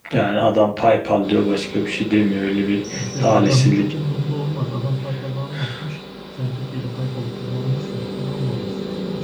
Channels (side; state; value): both; identical; correlation 1.00